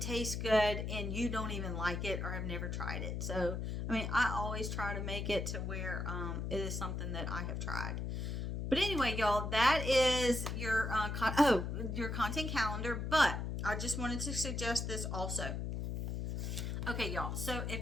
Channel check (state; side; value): noise; left; hum, 3 dB below the sound